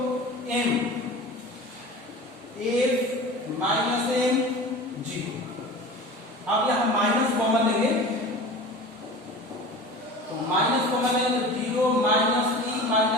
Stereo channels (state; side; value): normal; both; correlation 0.36